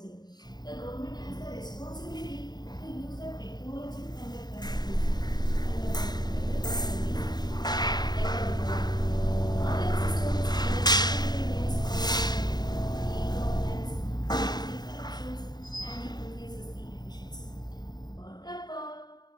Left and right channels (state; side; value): late; right; 0.20 ms